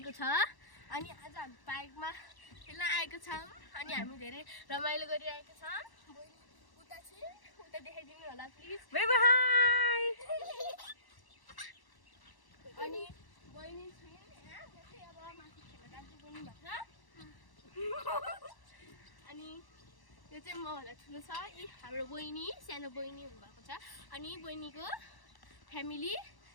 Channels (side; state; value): right; late; 1.1 ms